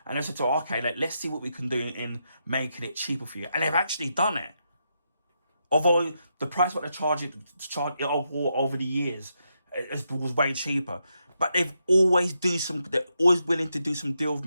And I said, okay, let's see what we can do in making it cheaper for you. And they've actually done it. Although the price what they're charging over the years was way cheaper, but they're always willing to do some deal with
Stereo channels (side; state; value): both; inverted; correlation -0.82